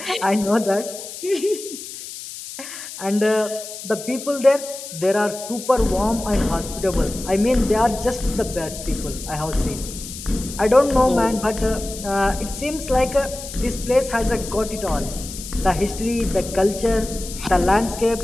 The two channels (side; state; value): left; noise; hiss, 11 dB below the sound